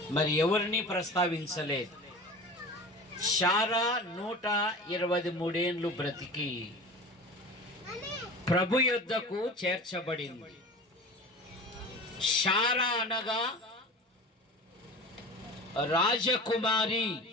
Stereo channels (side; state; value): both; normal; correlation 0.36